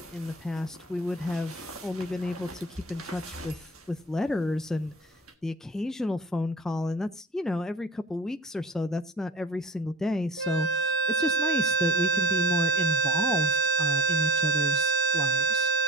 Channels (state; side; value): normal; both; correlation 0.37